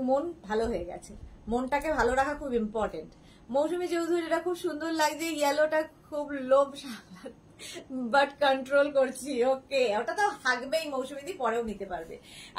মন ভালো হয়ে গেছে। মনটাকে ভালো রাখা খুব ইম্পর্টেন্ট। মৌসুমী চৌধুরী, এটা খুব সুন্দর লাগছে, ইয়েলোটা খুব লোভ বাট কন্ট্রোল করছি। ওকে, ওটা তো থাকবেই মৌসুমীদি, পরেও নিতে পারবে।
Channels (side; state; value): both; identical; correlation 1.00